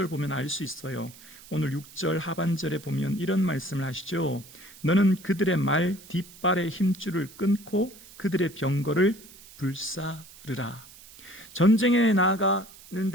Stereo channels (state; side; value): noise; right; hiss, 20 dB below the sound